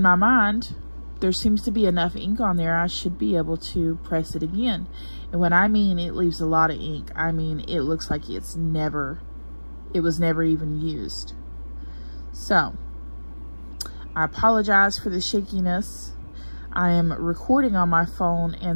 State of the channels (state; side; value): inverted; both; correlation -1.00